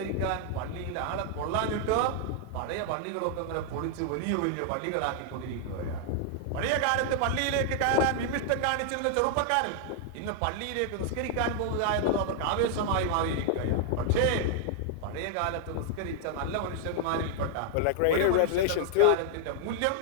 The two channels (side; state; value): both; different; correlation 0.00